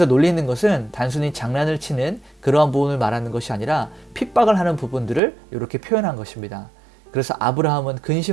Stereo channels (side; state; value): left; drops out; at 5.2 s